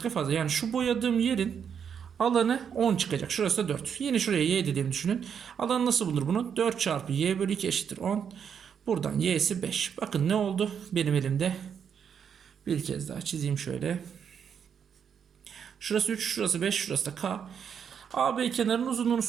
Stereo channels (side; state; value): left; quieter; 7.6 dB